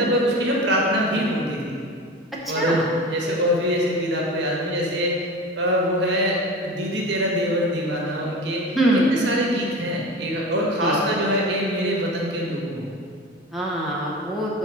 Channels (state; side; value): normal; both; correlation 0.31